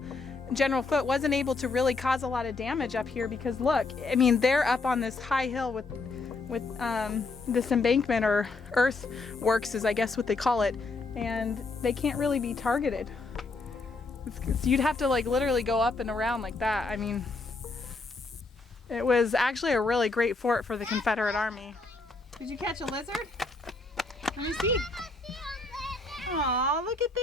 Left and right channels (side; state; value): right; quieter; 3.6 dB